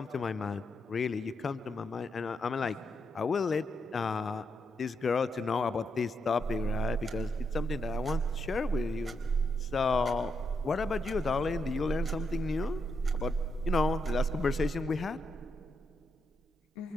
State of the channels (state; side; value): normal; both; correlation 0.81